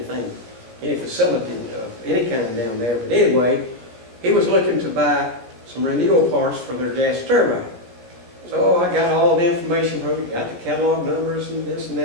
any facility of any kind down there. But anyway, he was looking to buy some renewal parts for their gas turbine. So I got all the information from him, got the catalog numbers and this and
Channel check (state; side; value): late; left; 16 ms